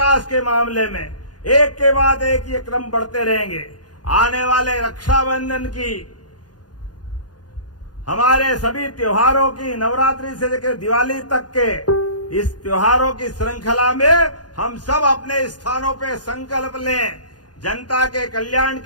के मामले में एक के बाद एक ये क्रम बढ़ते रहेंगे। आने वाले रक्षाबंधन की, हमारे सभी त्योहारों की, नवरात्रि से लेकर दिवाली तक के इस त्योहारों की श्रृंखला में हम सब अपने स्थानों पे संकल्प लें। जनता के कल्याण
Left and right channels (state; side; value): late; right; 0.69 ms